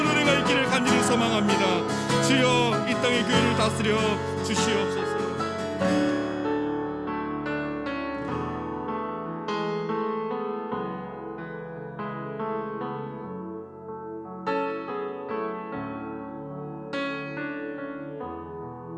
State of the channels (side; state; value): both; identical; correlation 1.00